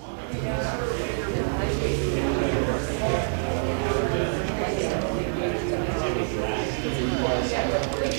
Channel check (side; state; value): left; silent; digital silence